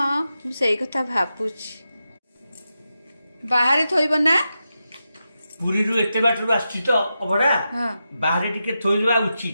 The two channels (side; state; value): both; inverted; correlation -0.89